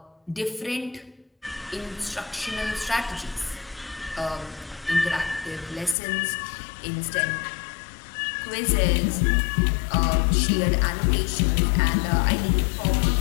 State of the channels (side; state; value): right; drops out; at 6.0 s